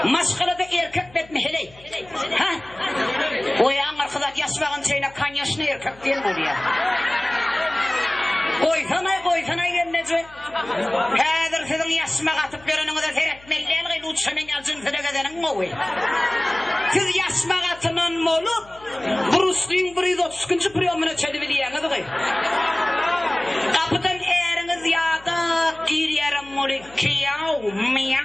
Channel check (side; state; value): left; noise; hum, 24 dB below the sound